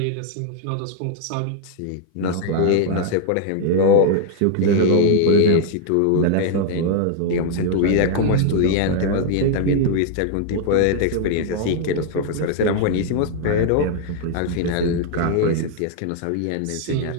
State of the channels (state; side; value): different; both; correlation -0.01